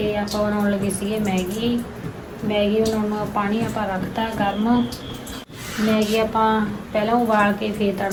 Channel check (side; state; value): both; identical; correlation 1.00